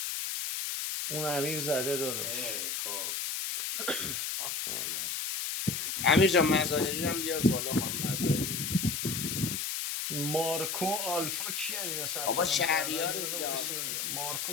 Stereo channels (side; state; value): left; noise; hiss, 2 dB below the sound